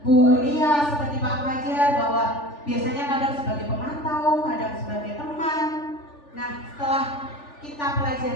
Lia, seperti Pak Fajar, bahwa biasanya kadang sebagai pemantau, kadang sebagai teman. Nah, setelah kita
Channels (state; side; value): late; right; 3.4 ms